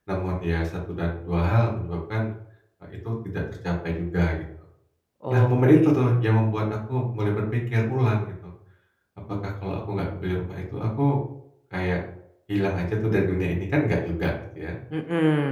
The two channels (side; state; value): both; identical; correlation 1.00